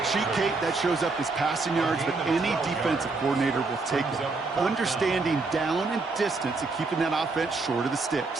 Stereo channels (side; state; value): left; quieter; 3.8 dB